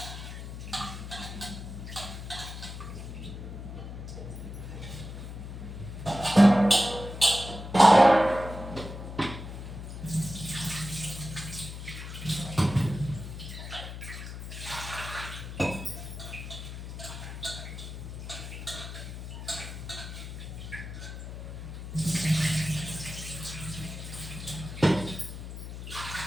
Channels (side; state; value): left; noise; hum, 9 dB below the sound